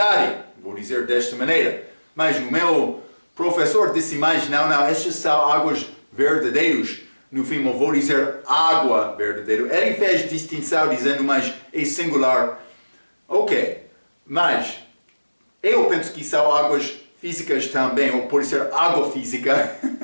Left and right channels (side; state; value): both; inverted; correlation -1.00